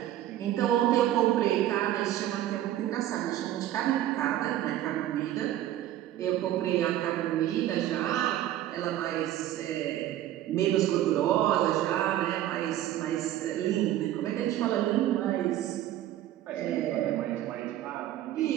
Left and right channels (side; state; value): left; quieter; 13.0 dB